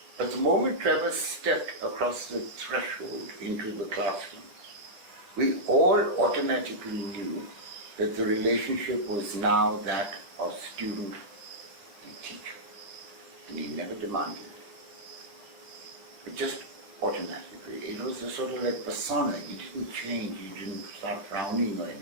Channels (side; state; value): left; late; 10 ms